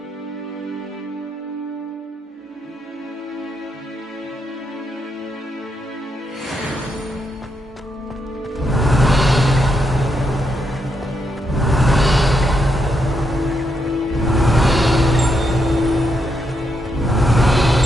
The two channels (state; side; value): normal; both; correlation 0.81